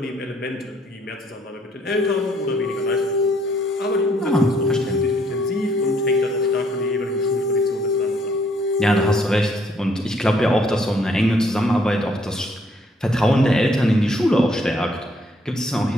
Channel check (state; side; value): normal; both; correlation 0.66